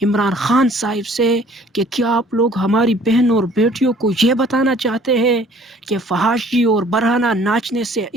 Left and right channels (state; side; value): normal; both; correlation 0.55